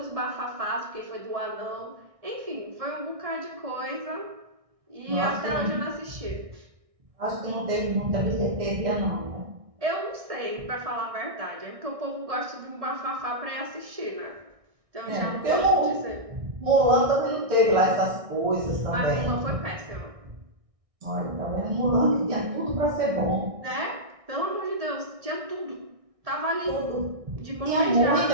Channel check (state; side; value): late; left; 1.6 ms